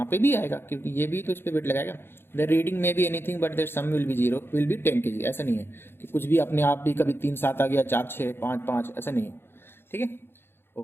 पे भी आएगा क्योंकि ये भी तो इस पर वेट लगाएगा। The reading may be anything but their sum will be 0 will be 10 kg, ऐसा नहीं है कि कुछ भी अपने आप भी कभी 3 7 आ गया, 4 6 5 5, ऐसा नहीं है, ठीक है।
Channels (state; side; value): late; right; 0.11 ms